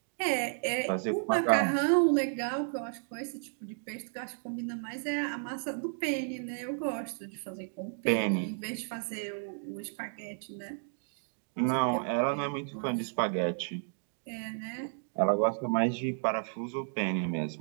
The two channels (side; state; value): left; silent; digital silence